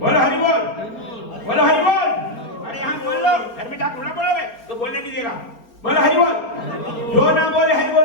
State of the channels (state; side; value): late; right; 4.3 ms